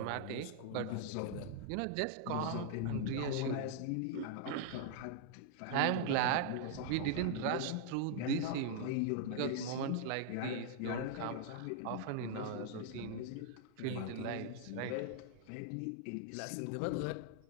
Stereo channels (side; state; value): both; different; correlation 0.00